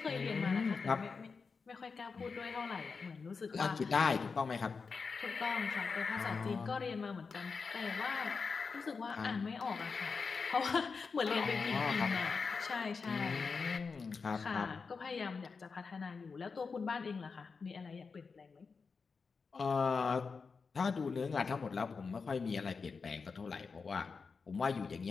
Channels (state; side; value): quieter; right; 5.0 dB